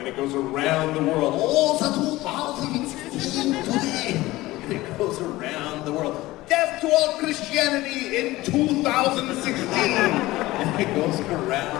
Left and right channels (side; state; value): right; quieter; 18.3 dB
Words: it goes around the world. Oh, it's 2016 today. And it goes around the world. Death to all Christianity in 2016. And it goes